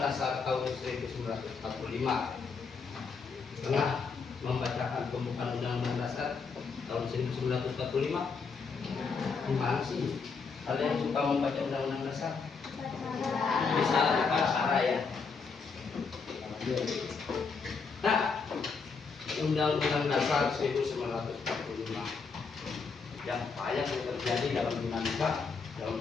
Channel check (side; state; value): right; quieter; 5.1 dB